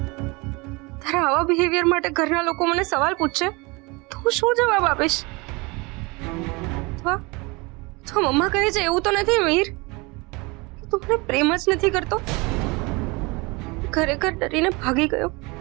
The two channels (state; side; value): quieter; left; 26.1 dB